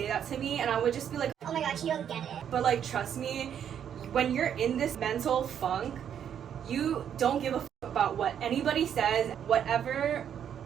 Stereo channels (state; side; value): quieter; left; 8.9 dB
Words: that to me and I would just be like, oh my god, you don't get it. But like, trust me, when you're in this mental funk, you don't give a f about what anybody says. Whatever